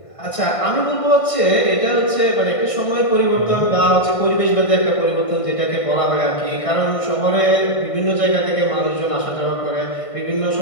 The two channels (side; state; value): right; late; 1.5 ms